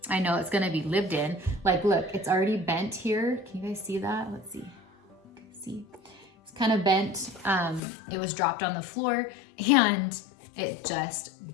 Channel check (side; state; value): right; drops out; at 7.8 s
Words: I know it's gonna be lived in. Like, look, it's already bent here. Can you guys see that? Let's see. See, it's kind of bent. It was dropped on the floor and it just